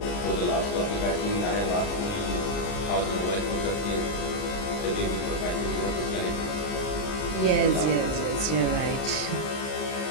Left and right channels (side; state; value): right; late; 39 ms